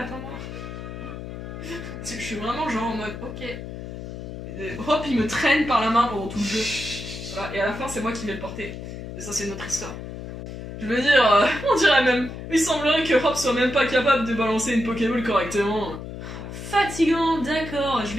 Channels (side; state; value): left; noise; hum, 9 dB below the sound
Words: Je suis vraiment genre en mode, ok. Hop, il me traîne par la main pendant tout le jeu. Voilà, et à la fin, c'est moi qui vais le porter. Et ça, c'est notre histoire. Je veux dire, on dirait même. Il semblerait que Hop soit même pas capable de balancer une Pokéball correctement. Fatigant, d'accord, je